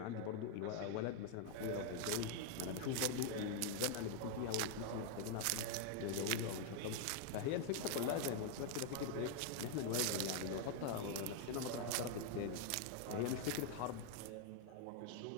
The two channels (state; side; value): different; both; correlation 0.00